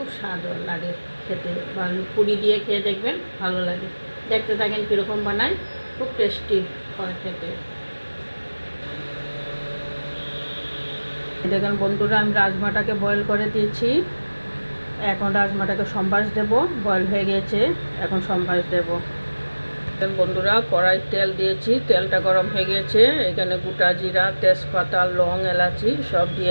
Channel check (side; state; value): both; inverted; correlation -1.00